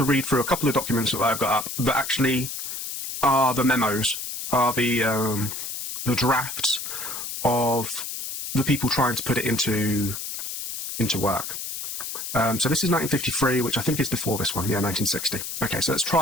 read through a couple of documents that I've got up that actually are the memos, are the drafts of the people trying to put it into work. So this is 1953, which I think is before this one. Yeah, 1960. Okay, so let's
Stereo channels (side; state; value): left; noise; hiss, 6 dB below the sound